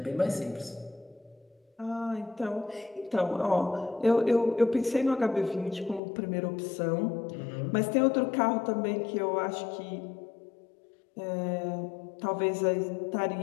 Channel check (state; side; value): drops out; right; at 6.0 s